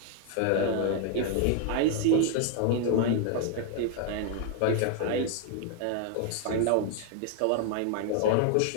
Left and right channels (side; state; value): both; different; correlation 0.00